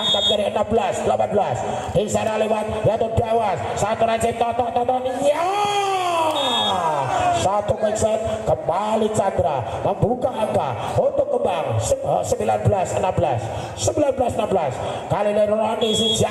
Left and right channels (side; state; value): both; identical; correlation 1.00